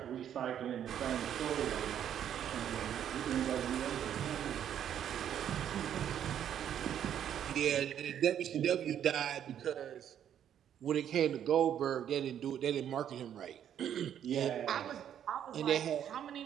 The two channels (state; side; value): quieter; left; 9.8 dB